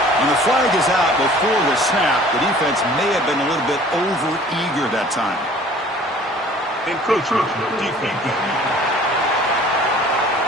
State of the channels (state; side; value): normal; both; correlation 0.50